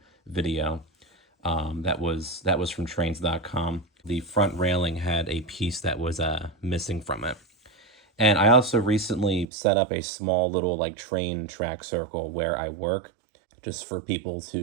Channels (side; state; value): left; drops out; at 9.5 s